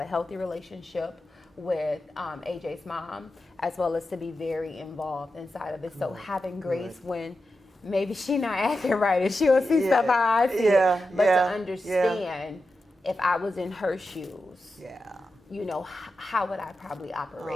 healthy relationship with AJ's mom, as well as to be very involved inside of it. So having grace when maybe she not acting right and she'll see stuff how I see it, but to understand if I was in her shoes, how would I probably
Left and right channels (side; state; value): both; normal; correlation 0.90